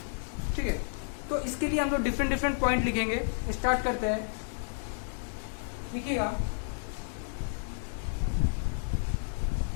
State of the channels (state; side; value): silent; right; 57 dB below the other